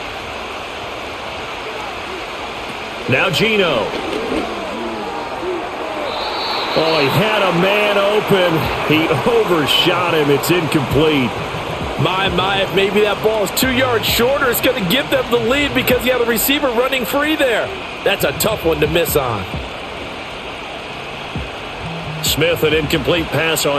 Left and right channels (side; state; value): both; identical; correlation 1.00